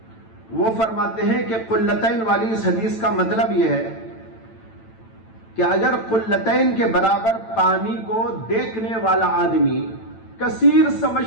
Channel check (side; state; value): right; late; 9.0 ms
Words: وہ فرماتے ہیں کہ قلتین والی اس حدیث کا مطلب یہ ہے کہ اگر قلتین کے برابر پانی کو دیکھنے والا آدمی کثیر